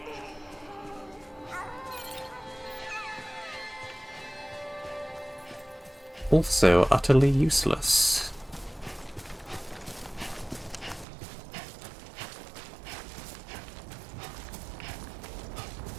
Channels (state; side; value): drops out; left; at 11.1 s